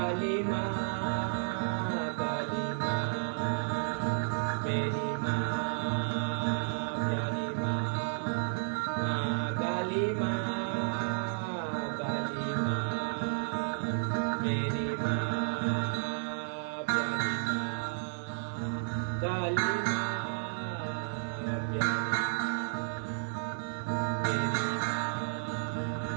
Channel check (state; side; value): silent; left; digital silence